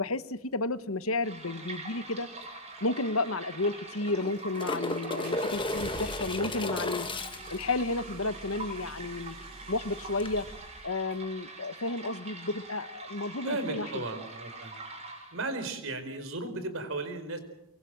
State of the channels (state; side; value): normal; both; correlation -0.10